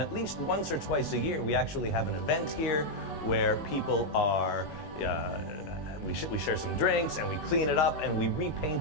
at least once or twice a year we actually have an event here where people are we share some drinks and we clean it up and we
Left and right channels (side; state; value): right; late; 19 ms